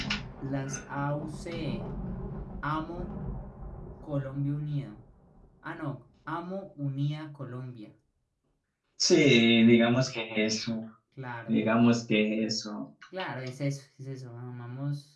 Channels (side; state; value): both; identical; correlation 1.00